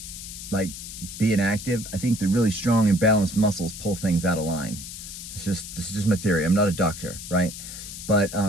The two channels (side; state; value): left; noise; hiss, 11 dB below the sound